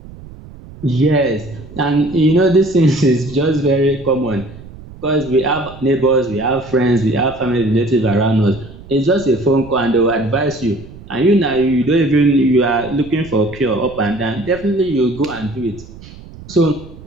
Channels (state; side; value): noise; right; rumble, 18 dB below the sound